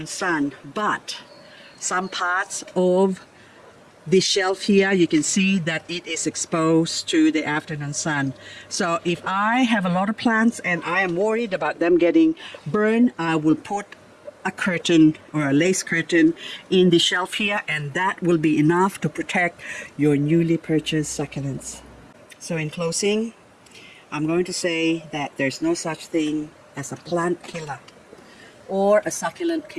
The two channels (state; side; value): identical; both; correlation 1.00